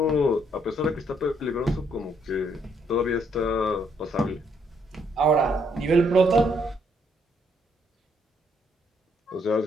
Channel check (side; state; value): both; normal; correlation 0.70